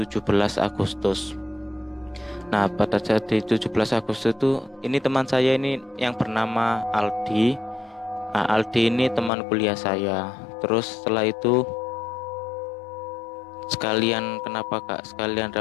Agustus. Nah, pada saat di 17 Agustus itu, ini teman saya ini yang bernama Aldi. Nah, Aldi ini teman kuliah saya. Terus setelah itu sekalian, kenapa kak, sekalian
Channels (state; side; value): drops out; right; at 9.3 s